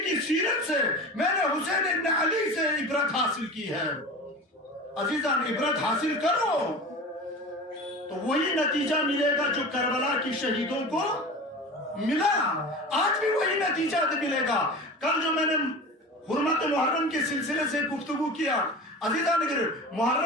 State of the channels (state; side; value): normal; both; correlation 0.33